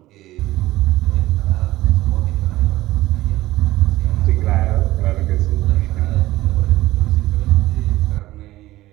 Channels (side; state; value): left; quieter; 16.9 dB